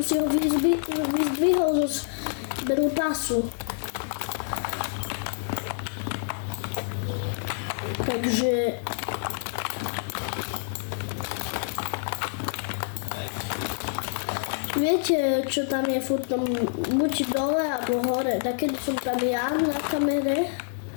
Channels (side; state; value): right; silent; digital silence